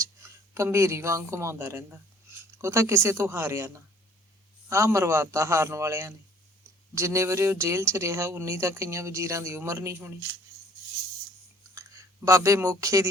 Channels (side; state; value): both; normal; correlation 0.56